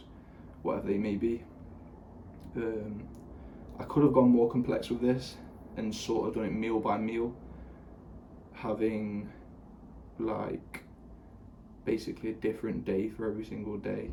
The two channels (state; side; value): identical; both; correlation 1.00